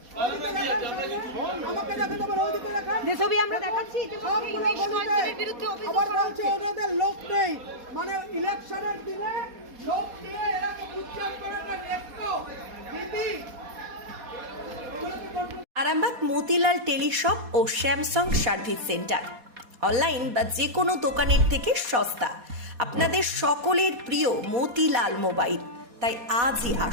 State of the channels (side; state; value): left; late; 4.2 ms